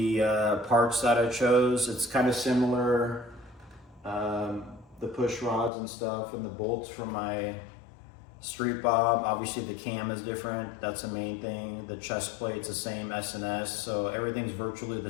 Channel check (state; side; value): drops out; right; at 5.7 s